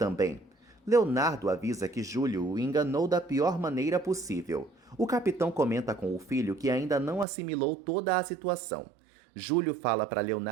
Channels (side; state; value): left; drops out; at 7.2 s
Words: Leonardo avisa que Júlio o enganou da pior maneira possível. O capitão comenta com o filho que ainda não assimilou toda a situação. Júlio fala para